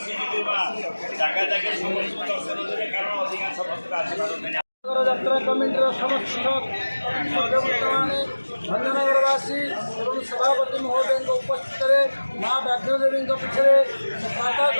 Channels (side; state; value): both; inverted; correlation -1.00